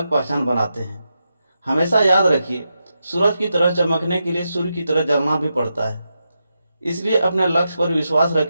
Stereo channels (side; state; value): both; inverted; correlation -0.87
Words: पहचान बनाते हैं। हमेशा याद रखिए, सूरज की तरह चमकने के लिए सूर्य की तरह जलना भी पड़ता है। इसलिए अपने लक्ष्य पर विश्वास